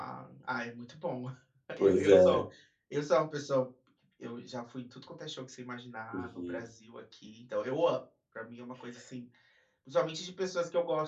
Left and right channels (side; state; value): both; identical; correlation 1.00